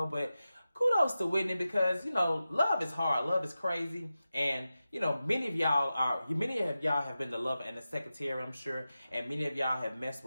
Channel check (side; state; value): both; inverted; correlation -0.93